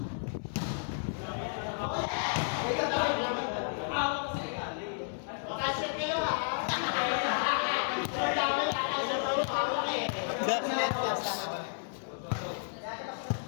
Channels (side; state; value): right; silent; 56 dB below the other